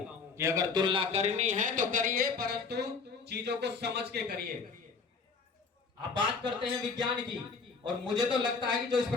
कि अगर तुलना करनी है तो करिए, परंतु चीजों को समझ के करिए। आप बात करते हैं विज्ञान की, और मुझे तो लगता है कि जो इस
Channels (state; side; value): quieter; right; 4.9 dB